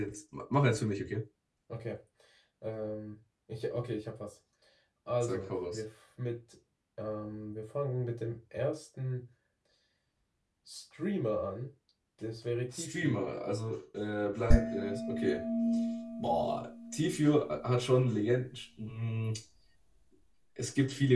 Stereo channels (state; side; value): identical; both; correlation 1.00